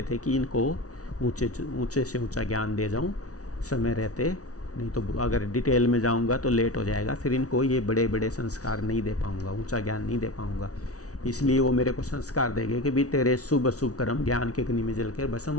थे कि इनको ऊंचे से ऊंचा ज्ञान दे जाऊं समय रहते, नहीं तो अगर डिटेल में जाऊंगा तो लेट हो जाएगा, फिर इनको ये बड़े बड़े संस्कार नहीं दे पाऊंगा, ऊंचा ज्ञान नहीं दे पाऊंगा। इसलिए वो मेरे को संस्कार देंगे कि भी तेरे शुभ अशुभ कर्म ज्ञान के अग्नि में जलकर भस्म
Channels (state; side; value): late; right; 0.67 ms